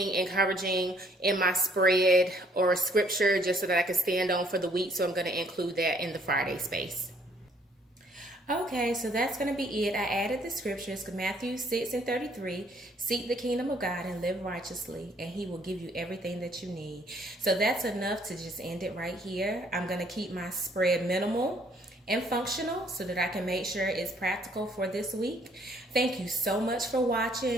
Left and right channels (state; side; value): normal; both; correlation 0.63